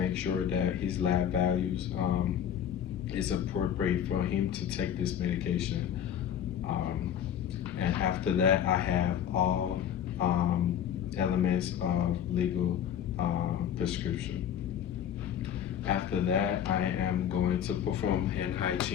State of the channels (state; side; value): quieter; right; 9.5 dB